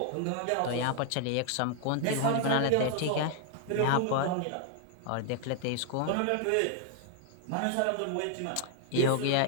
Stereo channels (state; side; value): different; both; correlation 0.00